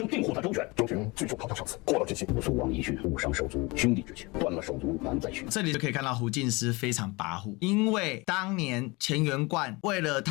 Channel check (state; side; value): quieter; right; 25.0 dB